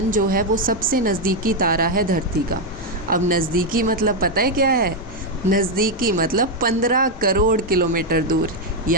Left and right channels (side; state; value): both; normal; correlation 0.02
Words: जो है वो सबसे नज़दीकी तारा है धरती का। अब नज़दीकी मतलब पता है क्या है? नज़दीकी मतलब 15 करोड़ किलोमीटर दूर,